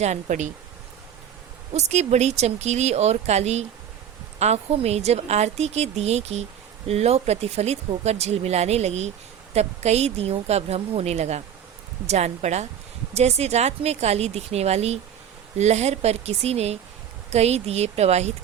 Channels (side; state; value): left; quieter; 9.2 dB